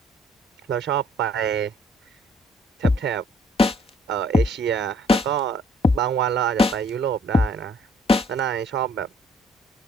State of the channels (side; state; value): both; normal; correlation 0.62